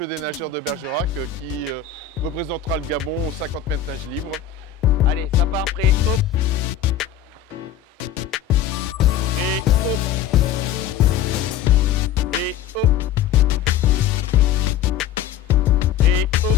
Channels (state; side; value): quieter; right; 9.3 dB